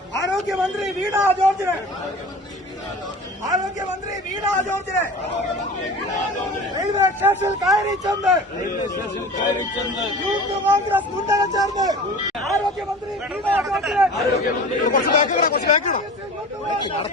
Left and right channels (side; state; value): both; normal; correlation 0.37